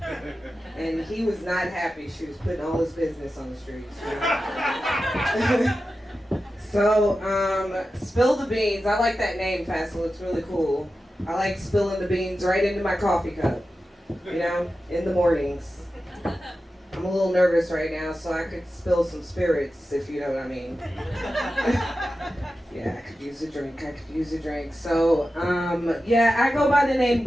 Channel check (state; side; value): normal; both; correlation 0.93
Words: and he was not happy she was putting all his business on the streets. You know? So, Spill the Beans. I like that name, Fassel. It's really cool. I like spilling the beans right into my coffee cup, you know, in the mornings. I'm a little nervous right now, so I could spill some spirits, if you know what I mean. Yeah, I could use a drink. So, yeah, I go by the name